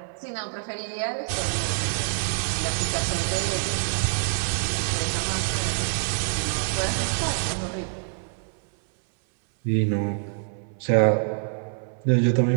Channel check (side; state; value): left; silent; 61 dB below the other